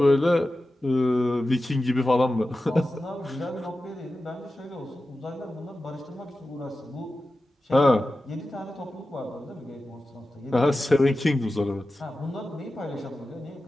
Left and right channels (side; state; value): both; normal; correlation 0.93